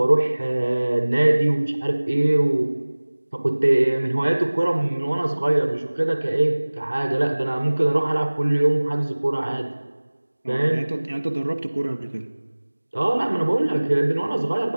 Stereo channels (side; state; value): both; inverted; correlation -1.00